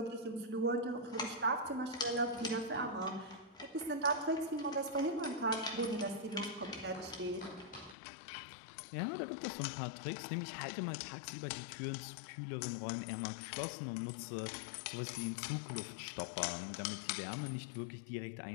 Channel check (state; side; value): drops out; right; at 8.0 s